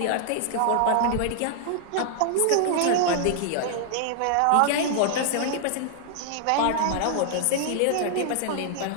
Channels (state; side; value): different; both; correlation -0.01